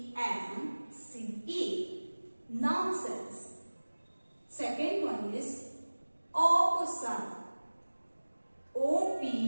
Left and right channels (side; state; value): both; inverted; correlation -1.00